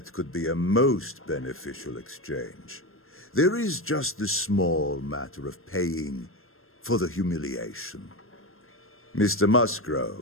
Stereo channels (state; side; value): late; right; 0.61 ms